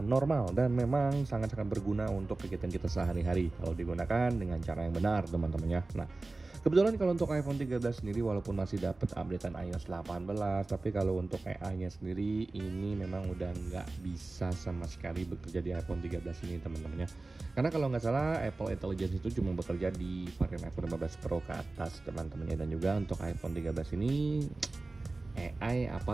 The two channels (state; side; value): quieter; left; 3.3 dB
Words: normal dan memang sangat-sangat berguna untuk kegiatan kita sehari-hari kalau digunakan dengan cara yang benar teman-teman ya. Nah, kebetulan kalau untuk iPhone 13 sendiri walaupun masih dapat updatean iOS 18, tapi kalau untuk AI-nya sendiri ini memang udah nggak bisa sama sekali bekerja di iPhone 13 ini teman-teman ya. Karena kalau nggak salah Apple Intelligence itu cuma bekerja di varian iPhone 15 Pro ke atas teman-teman ya. Dan juga untuk iPhone 13 ini AI